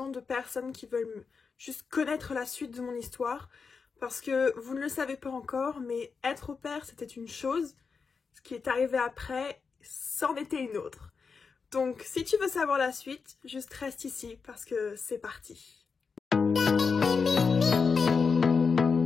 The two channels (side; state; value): right; quieter; 5.2 dB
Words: de personnes qui veulent juste connaître la suite de mon histoire. Parce que vous ne le savez pas encore, mais être au pair, c'était une chose. Ce qui est arrivé après, c'en était une autre. Donc, si tu veux savoir la suite, juste reste ici parce que c'est parti.